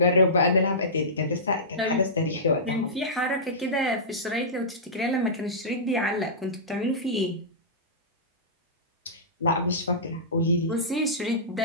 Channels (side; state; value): both; normal; correlation -0.19